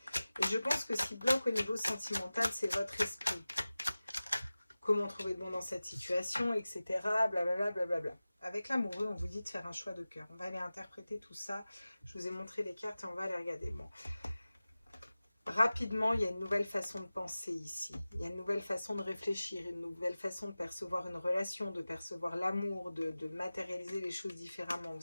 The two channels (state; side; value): inverted; both; correlation -0.97